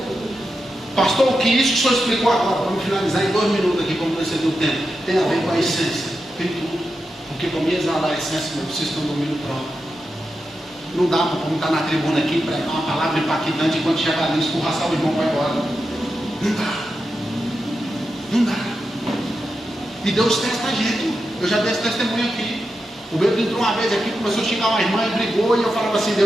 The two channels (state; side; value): normal; both; correlation 0.88